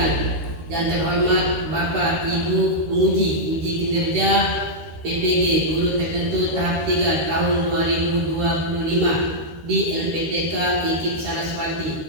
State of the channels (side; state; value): left; late; 13 ms